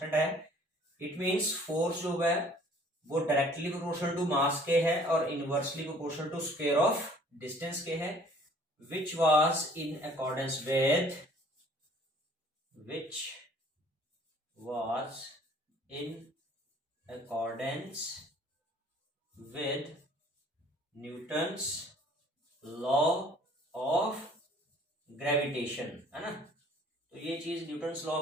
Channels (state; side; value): normal; both; correlation 0.55